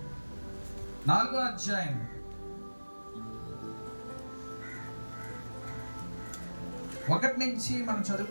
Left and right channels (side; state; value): both; inverted; correlation -1.00